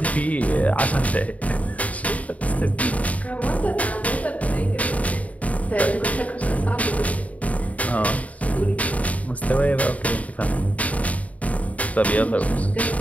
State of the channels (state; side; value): late; right; 0.069 ms